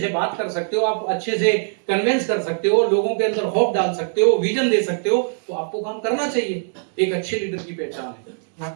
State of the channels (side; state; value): left; silent; digital silence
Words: बात कर सकते हो, आप अच्छे से कन्विंस कर सकते हो, लोगों के अंदर होप डाल सकते हो, विजन दे सकते हो, तो आपको काम करना चाहिए। एक अच्छे लीडर की पहचान है।